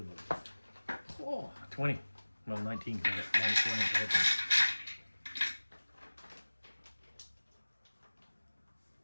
Oh, 20. Well, 19 because I got minus 1 intelligence.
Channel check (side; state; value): both; inverted; correlation -1.00